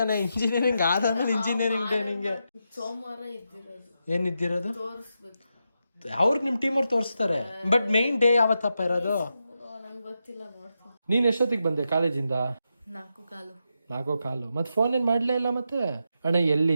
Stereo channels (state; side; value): inverted; both; correlation -0.86